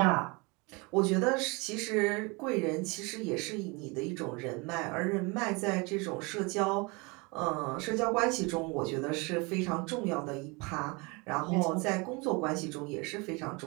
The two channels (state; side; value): quieter; left; 28.0 dB